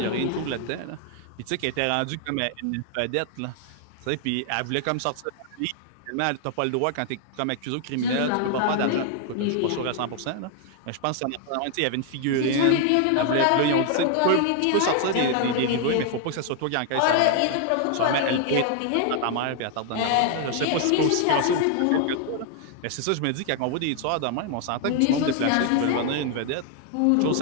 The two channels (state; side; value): different; both; correlation 0.00